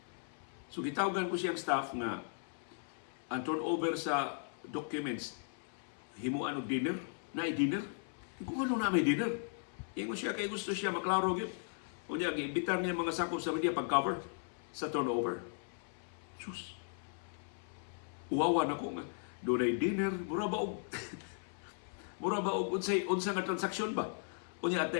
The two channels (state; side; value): silent; right; 53 dB below the other